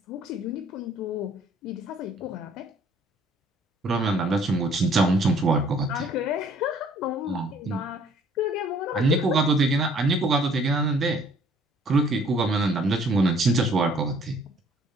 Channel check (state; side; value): normal; both; correlation 0.58